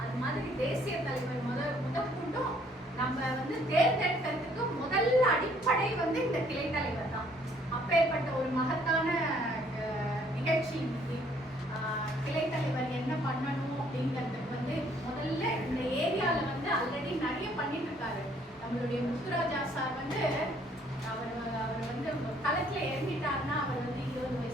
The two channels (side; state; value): both; normal; correlation 0.63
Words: அது மாதிரி தேசிய தலைவர் முதற்கொண்டும் நம்ம வந்து தேர்ந்தெடுக்கிறதுக்கு முதல் அடிப்படை வந்து இந்த கிளை தலைவர் தான். அப்பேற்பட்ட ஒரு மகத்தான நிகழ்ச்சி இன்னைக்கு. கிளை தலைவர் என்ன பண்ணணும் அப்படிங்கிறதுக்கு வந்து முதல்ல இந்த ஏரியால வந்து ஆல்ரெடி நிறைய பண்ணிட்டு இருக்காரு. நம்மளுடைய முத்துராஜா சார் வந்து அவர் வந்து களத்துல இறங்கிட்டாருன்னா, அவர் வந்து 20